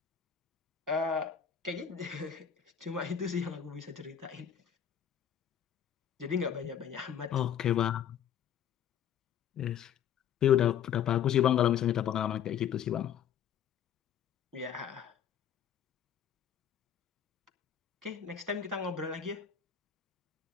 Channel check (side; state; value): right; quieter; 9.0 dB